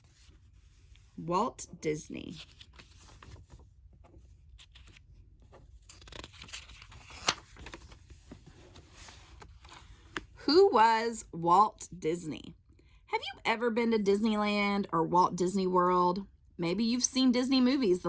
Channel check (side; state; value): both; identical; correlation 1.00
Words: Walt Disney. Who was Walt Disney? Have you ever been to Disneyland or Walt Disney World? Maybe you've seen Disney movies.